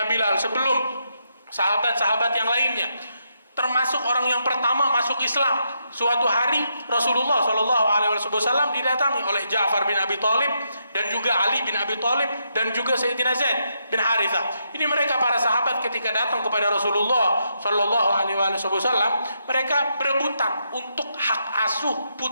Bilal, sebelum sahabat-sahabat yang lainnya. Termasuk orang yang pertama masuk Islam. Suatu hari Rasulullah SAW didatangi oleh Ja'far bin Abi Thalib dan juga Ali bin Abi Thalib dan juga Sayyidina Zaid bin Harithah. Ini mereka para sahabat ketika datang kepada Rasulullah SAW, mereka berebutan untuk hak asuh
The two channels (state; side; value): inverted; both; correlation -0.80